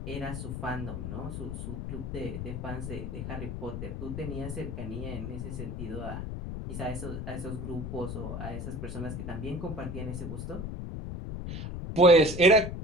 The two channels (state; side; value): noise; left; rumble, 5 dB below the sound